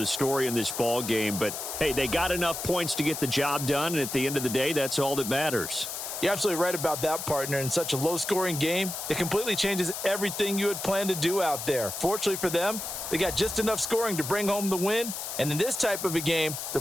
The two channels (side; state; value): left; noise; hiss, 6 dB below the sound